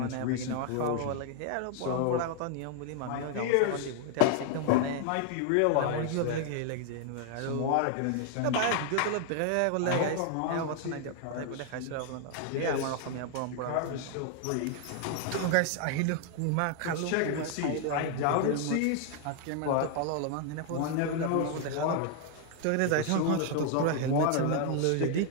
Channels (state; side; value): different; both; correlation 0.00